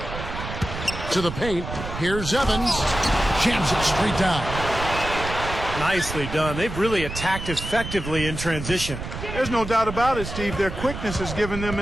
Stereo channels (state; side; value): noise; right; rumble, 8 dB below the sound